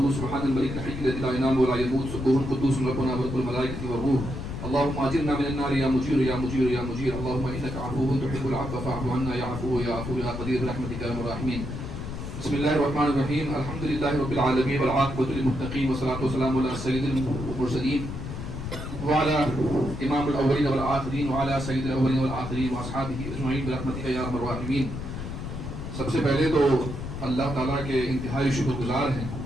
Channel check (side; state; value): left; noise; rumble, 7 dB below the sound